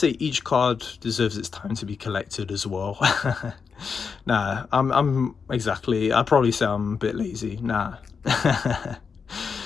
each card deserves its time to be collected as well. Nah, I'd probably say I'm a bit lazy. Nah.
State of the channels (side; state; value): right; quieter; 5.8 dB